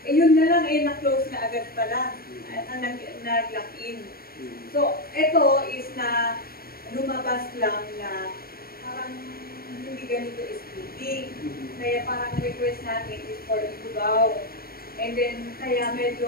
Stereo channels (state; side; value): late; right; 0.44 ms